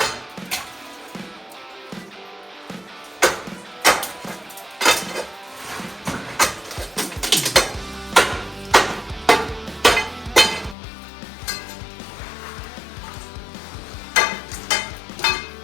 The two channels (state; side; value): drops out; right; at 10.8 s